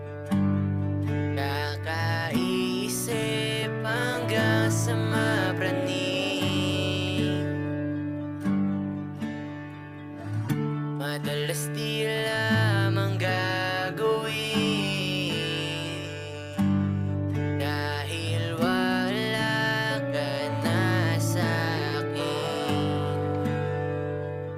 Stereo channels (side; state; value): both; identical; correlation 1.00